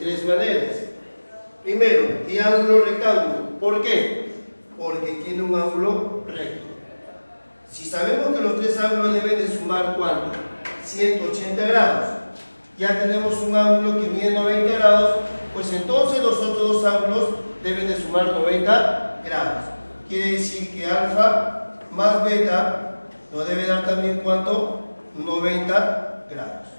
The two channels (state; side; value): inverted; both; correlation -1.00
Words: maneras. Primero, triángulo rectángulo. ¿Por qué? Porque tiene un ángulo recto. Si sabemos que los tres ángulos deben de sumar ¿cuánto? 180 grados. Ya tenemos un ángulo que mide 90 grados, pues entonces los otros dos ángulos deben de sumar 90 grados. Quiere decir que alfa más beta nos debe dar también ¿cuánto? 90 grados.